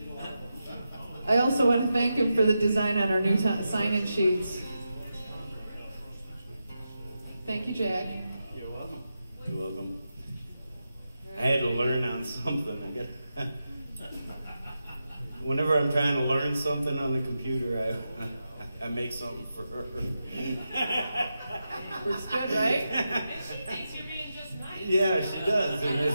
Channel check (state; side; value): inverted; both; correlation -0.89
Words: I also want to thank him for the design on our new sign-in sheets. Thank you, Jack. You're welcome. You're welcome. I had to learn on something. Whenever I'm trying to learn something on the computer, I make something for her. Works good, right? And she thinks you're being just nice. Yeah, she does. And